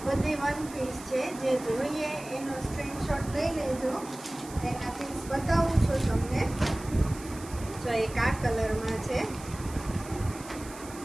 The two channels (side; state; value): right; noise; hiss, 16 dB below the sound